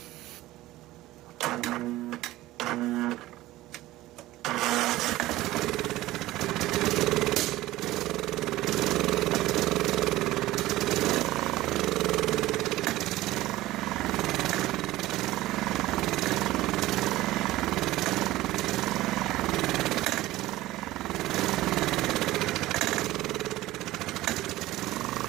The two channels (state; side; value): quieter; left; 16.8 dB